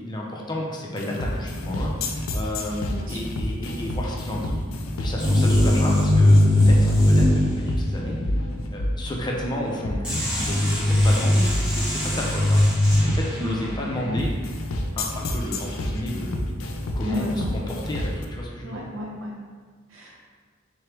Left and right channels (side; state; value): both; normal; correlation 0.87